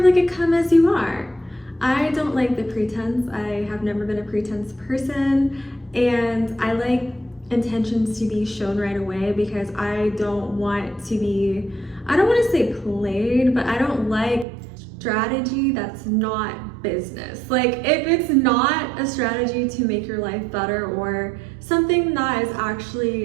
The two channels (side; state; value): left; drops out; at 14.5 s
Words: like a come as you are. I don't like the pretense. I have never been a pretense person, and I like intentions to be shown right away because I don't want to say played, but I don't like strategy that's not business. Like if it's not a strategy to make your life better or something that is